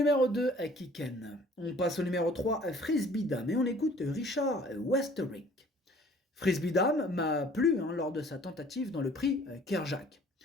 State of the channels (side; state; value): both; normal; correlation 0.53